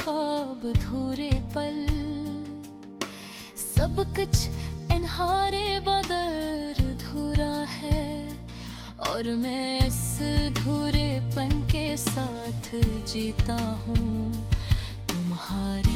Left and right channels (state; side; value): identical; both; correlation 1.00